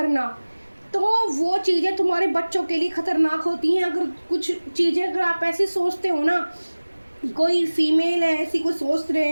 तो वो चीज़ें तुम्हारे बच्चों के लिए ख़तरनाक होती हैं। अगर कुछ चीज़ें अगर आप ऐसे सोचते हो ना, कोई फीमेल है ऐसी कोई सोच रहे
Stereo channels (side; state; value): both; inverted; correlation -1.00